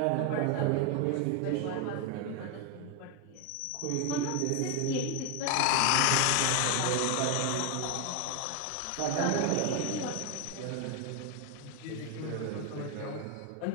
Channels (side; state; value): both; different; correlation 0.01